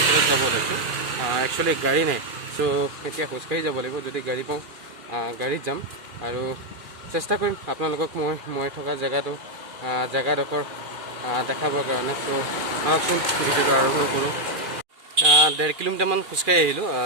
যাব ওলাইছোঁ। একচুৱেলি গাড়ী নাই, চ' এতিয়া খোজকাঢ়ি যাব লাগিব। যদি গাড়ী পাওঁ গাড়ীত যাম আৰু চেষ্টা কৰিম আপোনালোকক মই থকা জেগাডোখৰ দেখাবৰ কাৰণে। চ' আহকচোন ভিডিঅ'টো আৰম্ভ কৰোঁ। 1.5 কিলোমিটাৰমান খোজকাঢ়ি আহিলোঁ,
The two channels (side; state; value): left; late; 2.4 ms